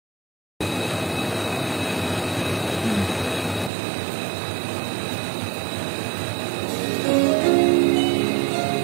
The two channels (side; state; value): left; drops out; at 3.7 s